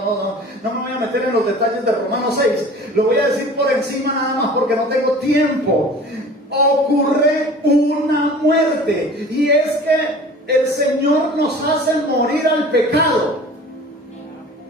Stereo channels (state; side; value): normal; both; correlation 0.43